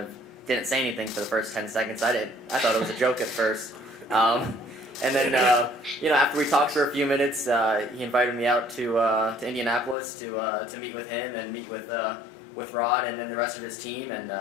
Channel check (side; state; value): right; drops out; at 10.0 s